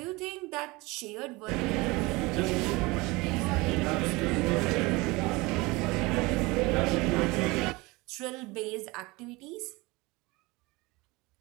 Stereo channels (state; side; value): quieter; left; 23.4 dB